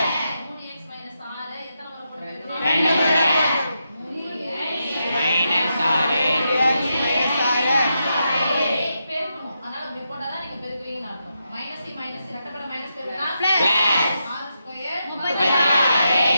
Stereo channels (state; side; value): inverted; both; correlation -0.85